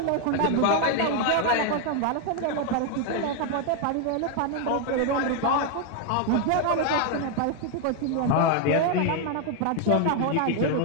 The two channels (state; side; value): different; both; correlation 0.00